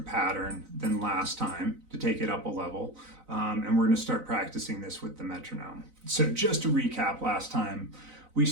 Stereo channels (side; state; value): left; late; 4.0 ms